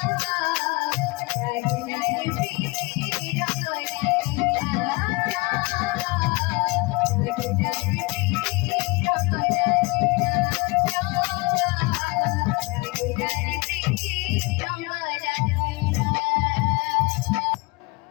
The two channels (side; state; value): right; quieter; 25.1 dB